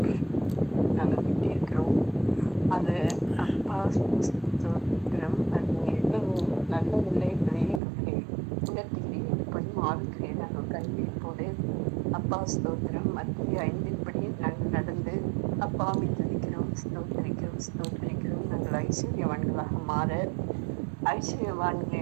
நாங்கள் விட்டிருக்கிறோம். அது அப்பா ஸ்தோத்திரம். அது எவ்வளவு நல்லதில்லை என்பதை எங்களுக்கு உணர்த்துகிறேன். எப்படியும் ஆவிக்கிறேன் நாங்கள் கல்விப்போடு அப்பா ஸ்தோத்திரம். மத்திய 5 நாங்கள் நடந்து அப்பாவை துதிக்கிறோம், ஸ்தோத்திரிக்கிறோம், ஸ்தோத்திரிக்கிறோம். நாங்கள் ஐஸ்வர்யவான்களாக மாற,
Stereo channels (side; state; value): left; drops out; at 7.8 s